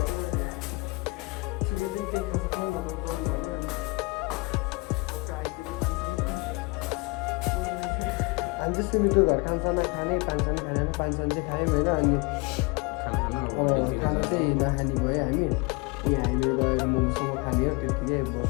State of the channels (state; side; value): quieter; right; 26.7 dB